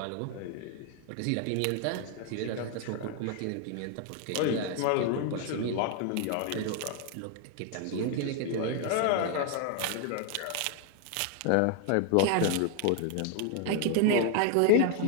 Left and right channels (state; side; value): different; both; correlation 0.00